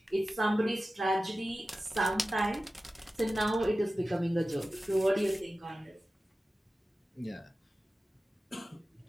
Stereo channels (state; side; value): normal; both; correlation 0.94